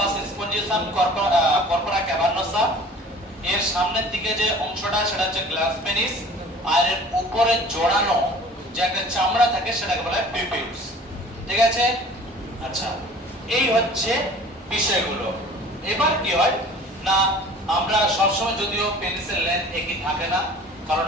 স্পঞ্জিওসাম, কর্পোরা ক্যাভার্নোসা। এর সামনের দিকে যে অংশটা সেটা হচ্ছে গ্ল্যান্স পেনিস, আর এর উপরে জড়ানো যে একটা চামড়া থাকে সেটাকে বলা হয় প্রিপিউলস। ঠিক আছে, আচ্ছা, এই হচ্ছে বিষয়গুলো। এবার কি হয় না, আমরা সবসময় যদিও পেনিসের লেন্থ একই থাকে না, কারণ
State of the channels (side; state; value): both; normal; correlation 0.46